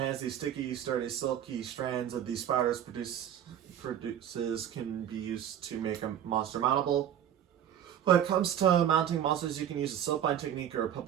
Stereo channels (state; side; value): quieter; left; 10.1 dB